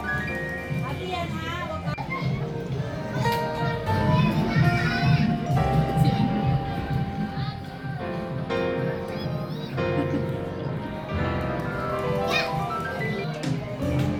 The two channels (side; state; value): both; identical; correlation 1.00